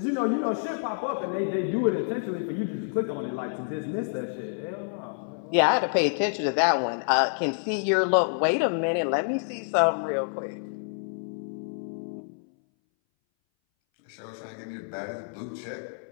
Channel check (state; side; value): silent; right; 59 dB below the other